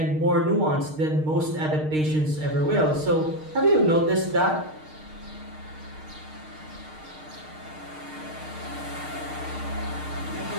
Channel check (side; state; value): left; late; 6.5 ms